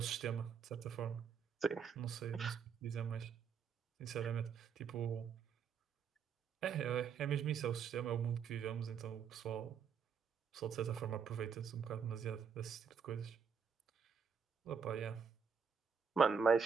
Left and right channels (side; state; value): left; quieter; 6.5 dB